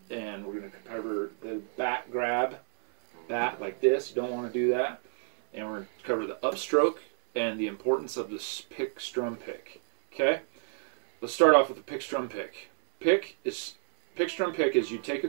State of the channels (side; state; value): left; silent; 58 dB below the other